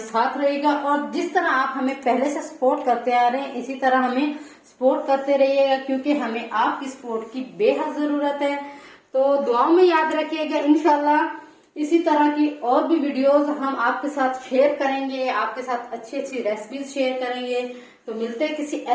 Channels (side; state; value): both; identical; correlation 1.00